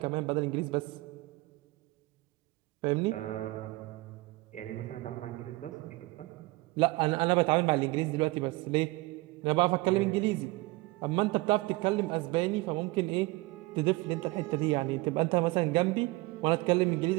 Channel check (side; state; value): left; quieter; 21.6 dB